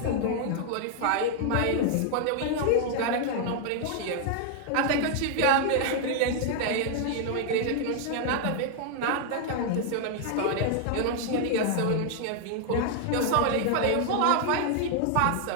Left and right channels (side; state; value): both; different; correlation 0.00